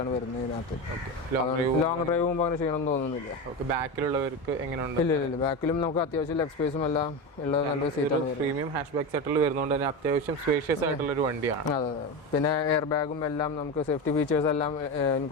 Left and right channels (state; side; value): normal; both; correlation 0.20